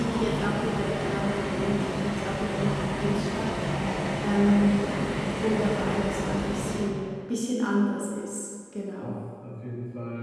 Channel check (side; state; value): both; identical; correlation 1.00